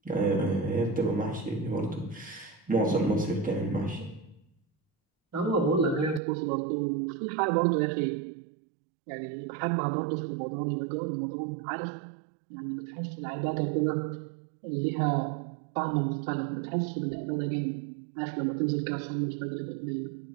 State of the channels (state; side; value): drops out; left; at 6.2 s